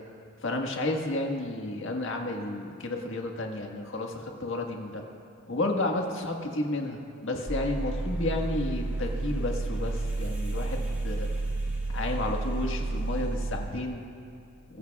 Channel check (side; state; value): both; normal; correlation 0.53